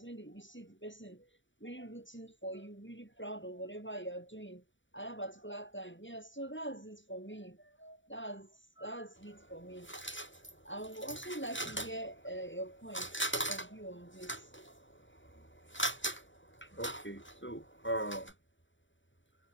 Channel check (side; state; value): right; late; 0.55 ms